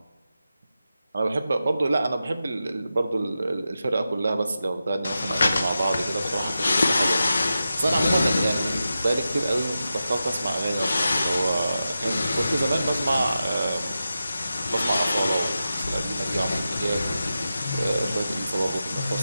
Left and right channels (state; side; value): inverted; both; correlation -0.91